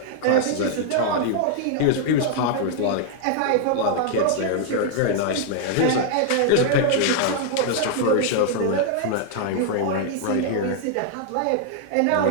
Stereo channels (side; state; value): both; different; correlation 0.00